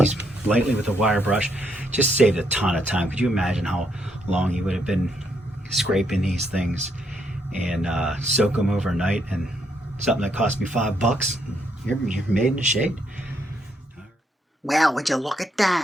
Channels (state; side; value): normal; both; correlation 0.75